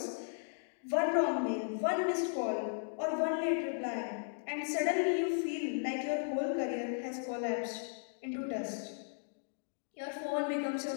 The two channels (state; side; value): silent; right; digital silence